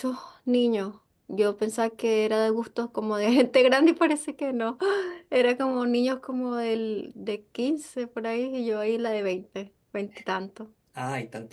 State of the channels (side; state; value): both; identical; correlation 1.00